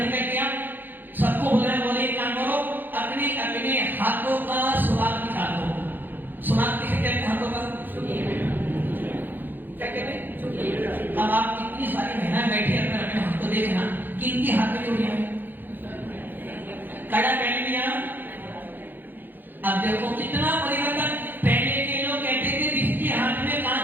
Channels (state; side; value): late; left; 0.090 ms